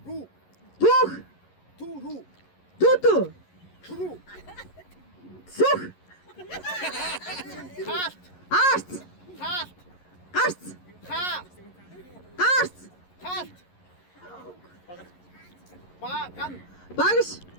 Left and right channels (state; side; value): late; right; 11 ms